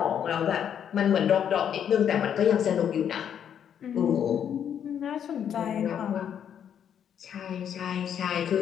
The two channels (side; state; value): right; quieter; 8.8 dB